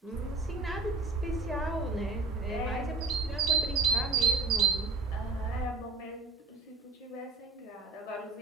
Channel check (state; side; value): quieter; left; 3.6 dB